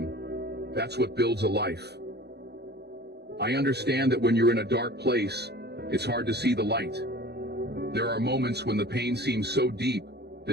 that's what builds a life. I understand that when you're in a dark place, it's hard to see the light. There are moments when the pain seems so deep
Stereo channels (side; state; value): left; late; 0.48 ms